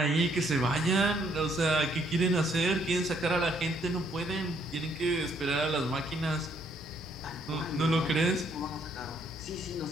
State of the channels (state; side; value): normal; both; correlation 0.69